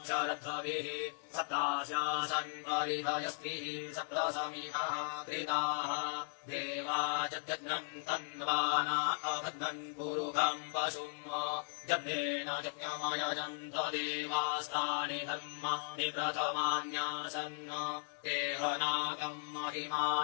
शरद्भिः सप्तास्यासन् परिधयस्तिः सप्तसमिधाः कृताः देवा जग्नन् तन्वाना अबध्नन् पुरुषं पशुम् जग्नेन यज्ञमयजन्त देवास्तानि धर्माणि प्रथमान्यासन् तेहनाकम्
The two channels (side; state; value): right; silent; 53 dB below the other